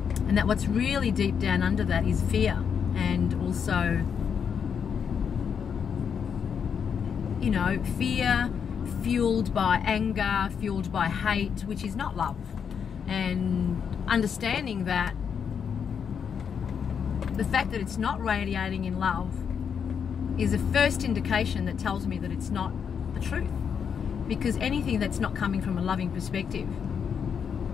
And that what's really deep down under that is fear, and also, you know, fear fueled by anger, fueled by hate, which is not love. And understanding that the fact that it's not radiating in love is a first indication that tells me that it's not the truth. Because anything that's not coming from a loving perspective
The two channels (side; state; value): right; quieter; 7.1 dB